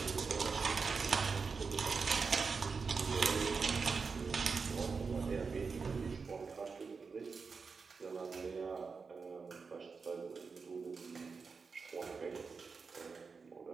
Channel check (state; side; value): quieter; left; 5.0 dB